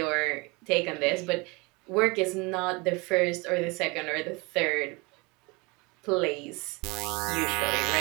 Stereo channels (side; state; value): left; quieter; 26.8 dB